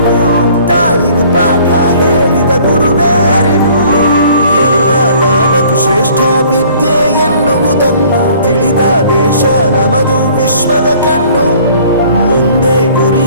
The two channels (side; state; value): both; inverted; correlation -0.55